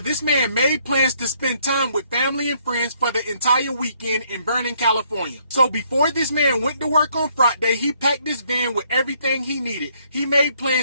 man made plans to spend time with family and friends for the entire weekend in Vernon, California. So before this man went to work on Friday, he packed his van with everything he needed. He made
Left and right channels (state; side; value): inverted; both; correlation -0.68